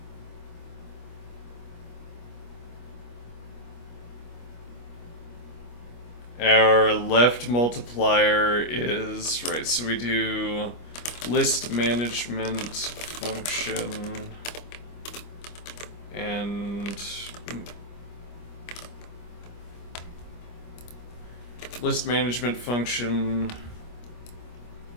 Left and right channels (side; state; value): right; late; 25 ms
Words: our left multiplier is, right, so we do list management function and list management function.